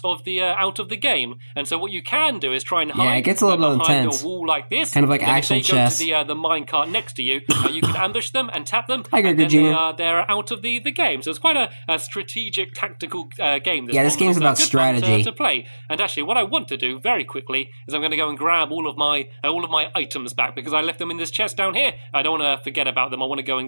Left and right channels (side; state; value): both; inverted; correlation -1.00